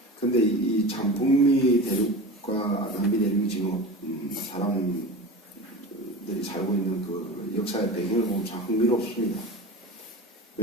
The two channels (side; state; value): both; normal; correlation 0.31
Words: 근데 이 참 북미 대륙과 남미 대륙이 지금 사람들이 살고 있는 그 역사의 배경을 보면 참 흥미롭습니다.